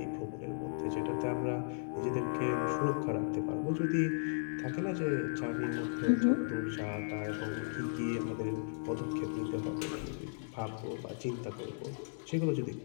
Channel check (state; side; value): silent; right; digital silence